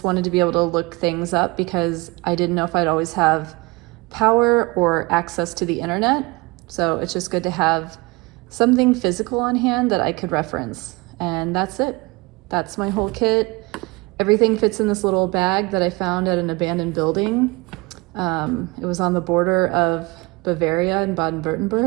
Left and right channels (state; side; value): quieter; left; 24.9 dB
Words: wanted to be able to look things up because I didn't know if I'd always have power or access to the internet. So it's just good to have something physical on hand that I could reference. And that's it. That's my whole kit. Everything fits in this little bag that I found at an abandoned building. It was on the border of Bavaria and